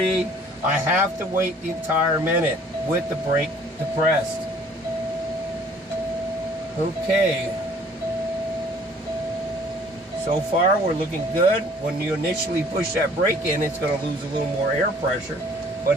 I have to wait the entire minute with the brake depressed. Okay. So far we're looking good. When you initially push that brake in, it's going to lose a little more air pressure, but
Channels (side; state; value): both; normal; correlation 0.55